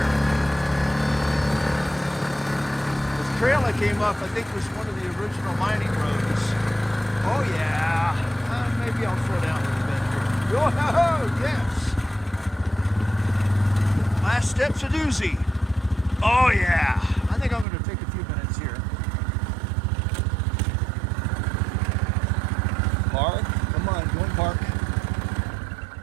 This trail I came up, I think, was one of the original mining roads. Oh yeah. Maybe I'll slow down a little bit here. Oh yes. Last step's a doozy. Oh yeah. I think I'm going to take a few minutes here. Park. Come on, go and park.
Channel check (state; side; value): drops out; left; at 17.7 s